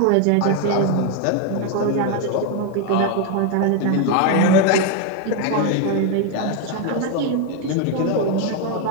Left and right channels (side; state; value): both; different; correlation 0.01